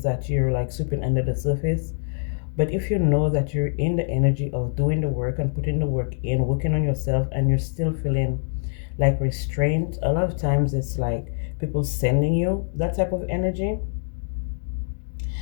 that you're like sweeping under the surface. But if you know that you're in the energy of doing the work and putting the work in, working on yourself, and you're still feeling like restraint, a lot of times it's like people sending you that type of energy.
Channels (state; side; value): silent; right; digital silence